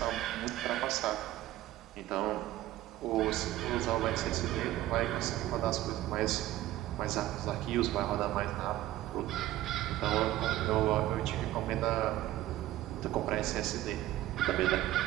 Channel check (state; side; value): quieter; left; 15.0 dB